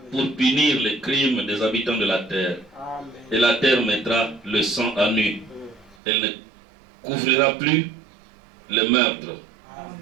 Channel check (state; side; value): drops out; left; at 6.0 s